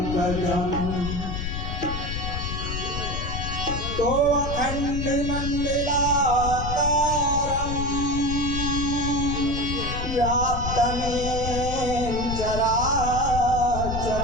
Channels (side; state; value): left; noise; rumble, 4 dB below the sound